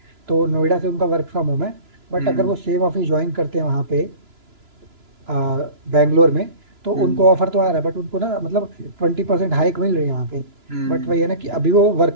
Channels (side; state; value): left; late; 2.9 ms